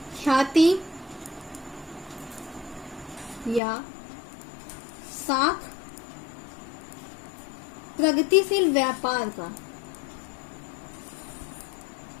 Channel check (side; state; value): right; drops out; at 3.6 s